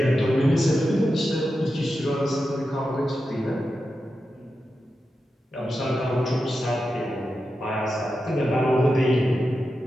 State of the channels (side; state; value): both; normal; correlation 0.90